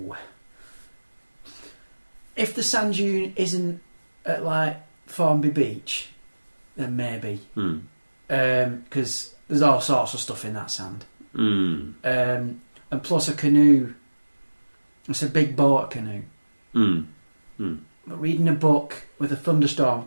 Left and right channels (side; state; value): both; inverted; correlation -1.00